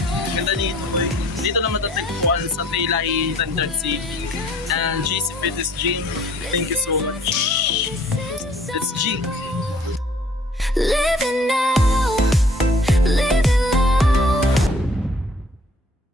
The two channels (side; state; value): both; normal; correlation 0.55